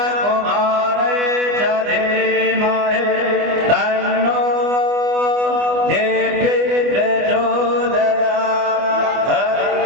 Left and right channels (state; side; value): late; left; 24 ms